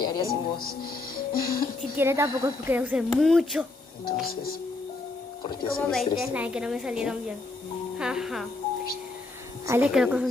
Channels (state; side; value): quieter; right; 3.1 dB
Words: haría sin vos. Si quiere tampoco es porque usé mucho. Entonces, ¿por qué Como sigues 20 triste? slides que no me salieron bien. Ajá. Ah, le quiero